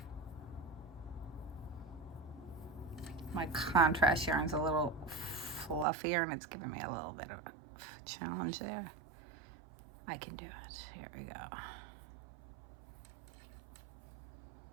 My contrast yarn's a little fluffier, and it's giving me a little bit of a challenge there. I can do it. Here we go.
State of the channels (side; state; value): left; drops out; at 5.9 s